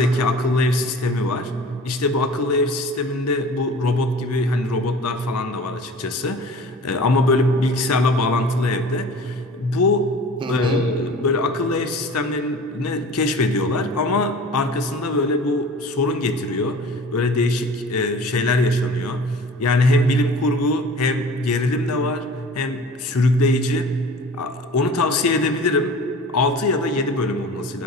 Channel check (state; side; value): normal; both; correlation 0.42